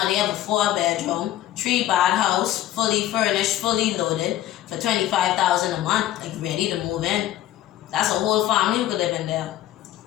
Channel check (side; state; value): right; quieter; 13.6 dB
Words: they have a 4-bedroom, 3-bath house, fully furnished, fully loaded for $25,000 a month, like ready to move in. That's a whole family who could live in there.